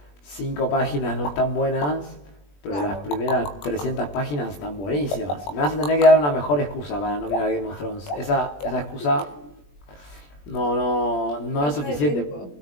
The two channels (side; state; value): right; late; 21 ms